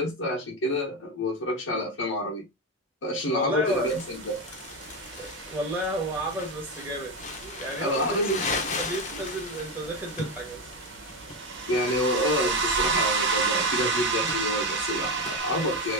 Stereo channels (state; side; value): normal; both; correlation 0.12